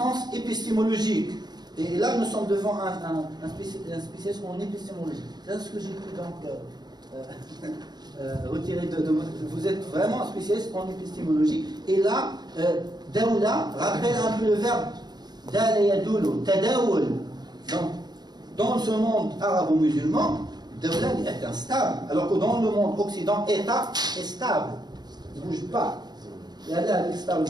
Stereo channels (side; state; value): left; late; 0.20 ms